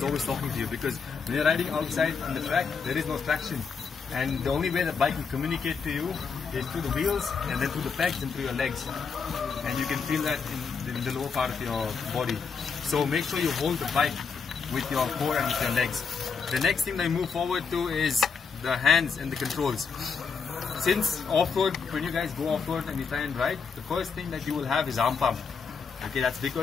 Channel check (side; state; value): right; quieter; 5.6 dB